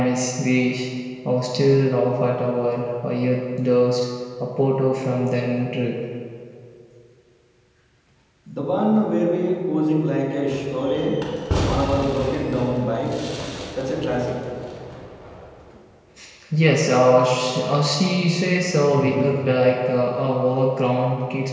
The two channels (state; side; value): identical; both; correlation 1.00